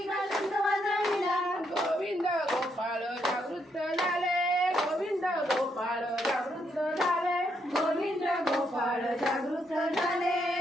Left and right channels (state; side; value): normal; both; correlation 0.77